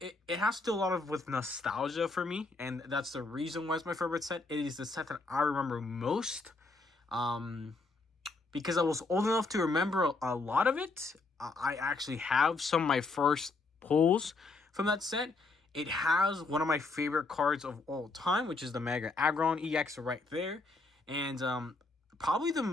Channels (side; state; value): right; quieter; 3.6 dB